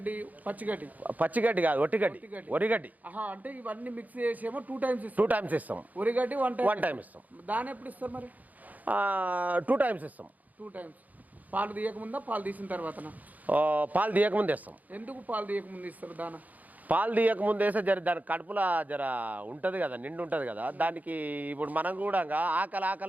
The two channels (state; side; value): late; left; 0.079 ms